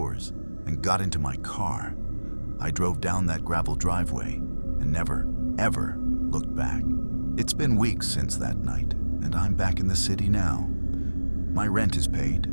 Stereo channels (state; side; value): inverted; both; correlation -1.00